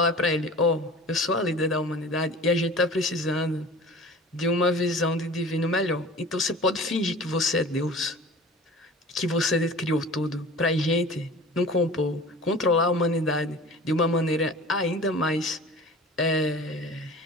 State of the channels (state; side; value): normal; both; correlation 0.40